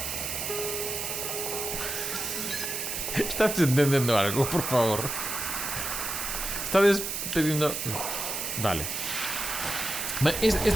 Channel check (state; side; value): noise; right; hiss, 3 dB below the sound